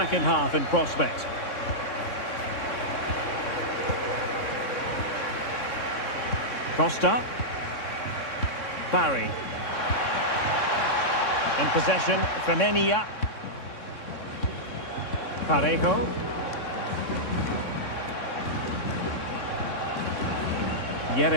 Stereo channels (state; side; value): late; right; 3.6 ms